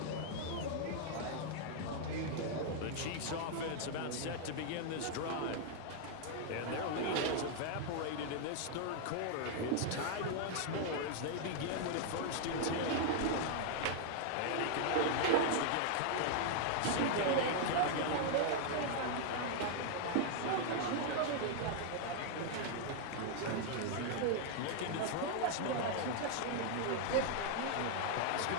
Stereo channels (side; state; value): both; different; correlation 0.00